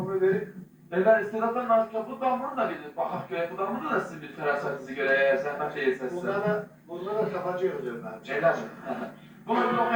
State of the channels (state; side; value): identical; both; correlation 1.00